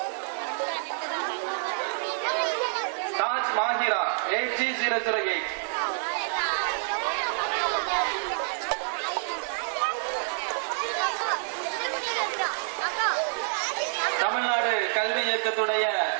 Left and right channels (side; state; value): left; silent; 58 dB below the other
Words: 6B008. Tamil Nadu கல்வி இயக்கத்துடைய